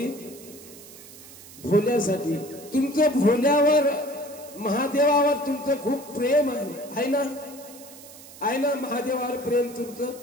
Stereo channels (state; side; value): noise; right; hiss, 18 dB below the sound